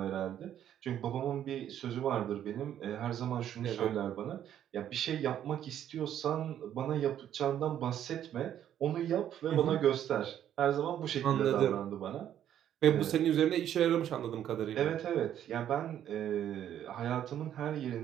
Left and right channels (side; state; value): left; quieter; 10.6 dB